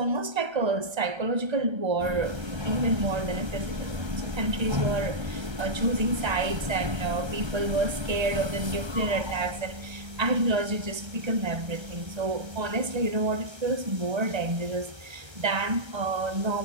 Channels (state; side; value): late; left; 1.3 ms